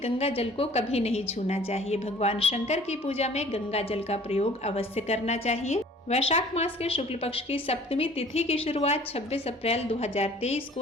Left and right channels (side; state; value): both; normal; correlation 0.51